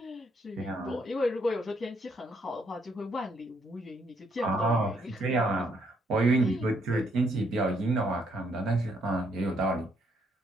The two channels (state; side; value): normal; both; correlation 0.72